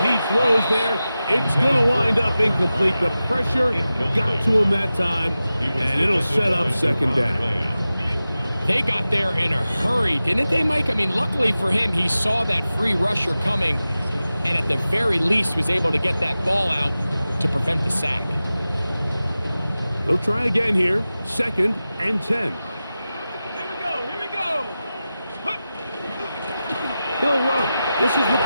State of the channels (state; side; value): inverted; both; correlation -0.94